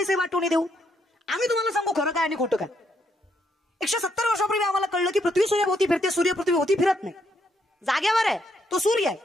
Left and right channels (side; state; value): both; normal; correlation 0.75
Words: वाटून देऊ. आम्ही तुम्हाला सांगू खरं काय आणि खोटं काय. 170 वर्षापूर्वी आम्हाला कळलं की पृथ्वी सूर्याभोवती फिरते, सूर्य पृथ्वीभोवती फिरत नाही. जागेवर आहे तो सूर्य आहे,